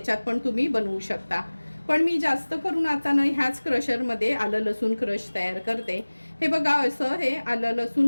पण तुम्ही बनवू शकता. पण मी जास्त करून आता ना ह्याच क्रशरमध्ये आलं लसूण क्रश तयार करते. हे बघा, असं हे आलं लसूण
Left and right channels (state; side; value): inverted; both; correlation -1.00